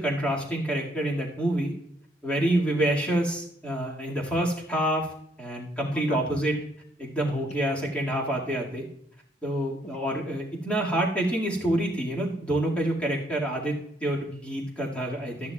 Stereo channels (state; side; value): normal; both; correlation 0.68